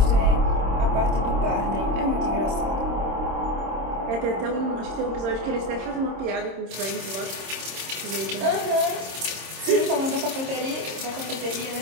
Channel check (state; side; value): late; left; 26 ms